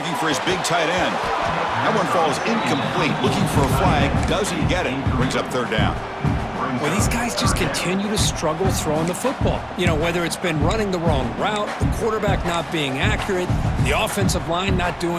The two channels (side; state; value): both; identical; correlation 1.00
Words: for his big tight end. That one falls incomplete. Looking for a flag. Doesn't get it. Brings up 3rd down. Well, these guys just continue to struggle throwing the football. You know, whether it's been running the wrong route, the quarterback not being accurate, the offensive line not